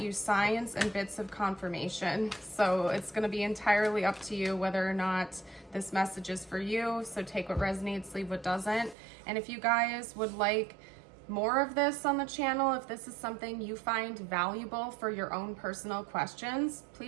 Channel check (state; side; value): drops out; left; at 9.0 s